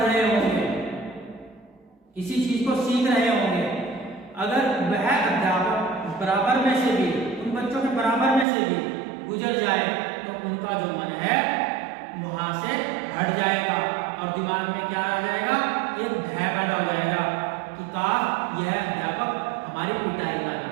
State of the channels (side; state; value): left; drops out; at 8.5 s